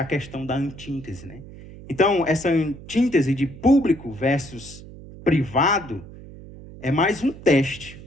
questão da antítese, né? Então, essa antítese de público versus privado é mais um teste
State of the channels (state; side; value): noise; right; hum, 16 dB below the sound